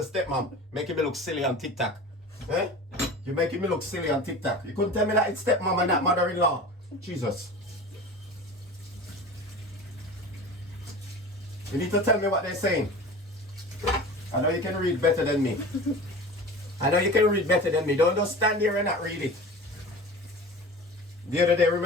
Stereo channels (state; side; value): normal; both; correlation 0.36